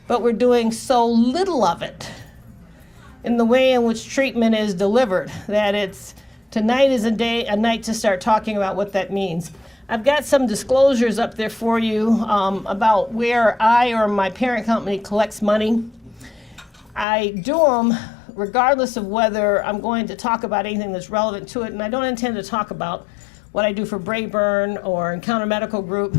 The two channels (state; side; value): drops out; right; at 17.1 s